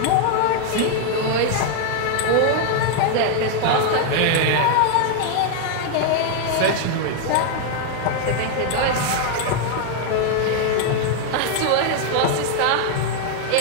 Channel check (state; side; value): different; both; correlation 0.00